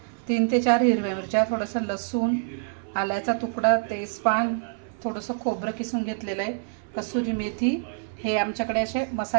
3 ते 4 हिरव्या मिरच्या, थोडंसं लसूण, आल्याचा तुकडा, तेजपान, थोडंसं खोबरं किसून घेतलेलं आहे, कसुरी मेथी। हे आमच्याकडे असे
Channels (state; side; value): silent; left; 57 dB below the other